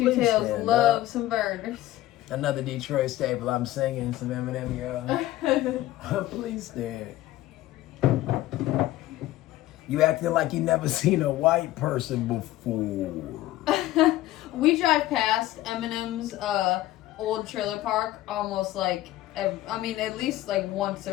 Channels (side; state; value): right; quieter; 15.5 dB